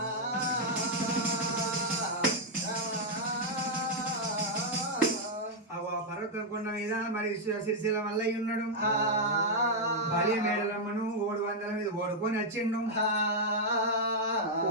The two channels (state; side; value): normal; both; correlation -0.03